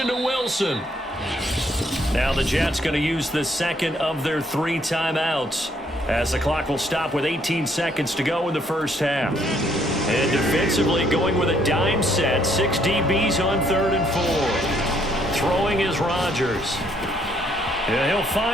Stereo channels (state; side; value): normal; both; correlation 0.68